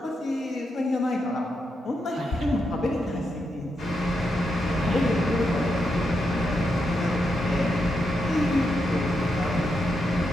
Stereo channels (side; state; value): both; normal; correlation 0.84